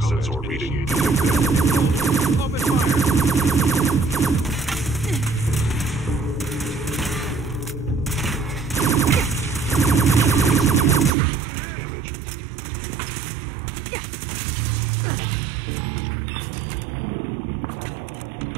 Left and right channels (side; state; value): left; drops out; at 11.2 s